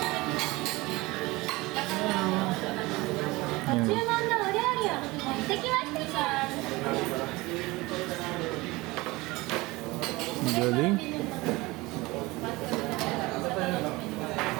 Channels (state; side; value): quieter; left; 21.8 dB